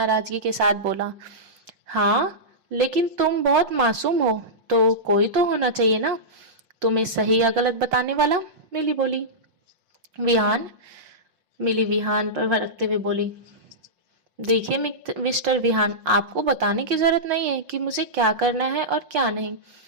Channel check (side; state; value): left; late; 5.6 ms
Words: के साथ बोला। हाँ, लेकिन तुम बहुत मासूम हो, तो कोई तो होना चाहिए ना तुम्हें सही या गलत बताने वाला। मिली बोली। विहान मिली विहान पर भड़कते हुए बोली। देखिए मिस्टर विहान, आपको बताने की जरूरत नहीं है कि मुझे क्या करना है और क्या नहीं,